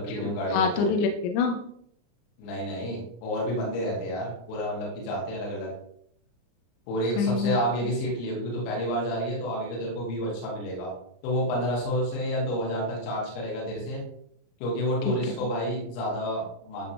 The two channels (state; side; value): late; right; 34 ms